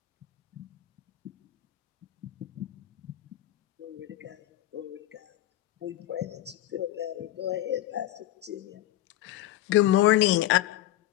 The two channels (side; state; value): right; quieter; 14.5 dB